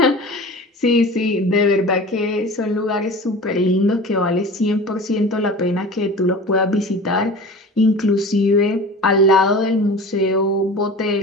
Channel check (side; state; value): both; normal; correlation 0.37